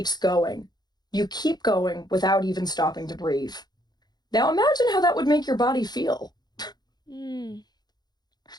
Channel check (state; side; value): late; right; 0.20 ms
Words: going. You keep going without even stopping to breathe. Now imagine how that would make your body feel. Mm.